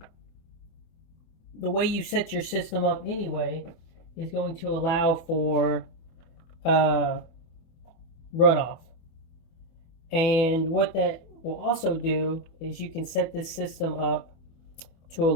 the way you set your system up anyway is going to allow for uh, runoff. And what that will also do is you can set this system up to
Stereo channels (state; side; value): late; right; 24 ms